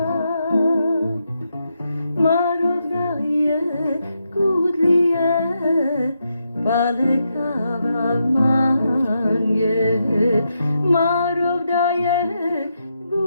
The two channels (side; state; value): both; inverted; correlation -0.83